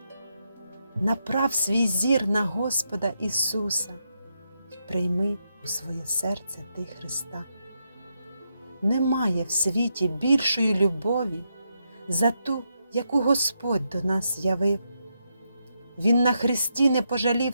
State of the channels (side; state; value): both; inverted; correlation -0.82